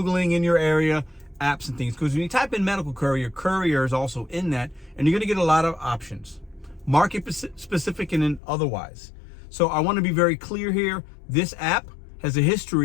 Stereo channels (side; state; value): right; drops out; at 8.4 s